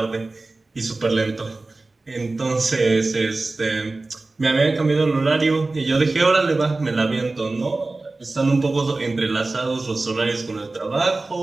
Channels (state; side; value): quieter; left; 3.3 dB